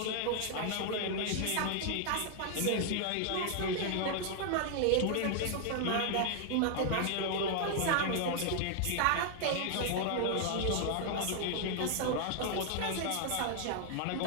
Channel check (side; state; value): both; different; correlation 0.00